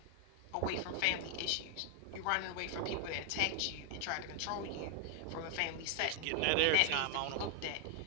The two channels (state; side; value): different; both; correlation 0.00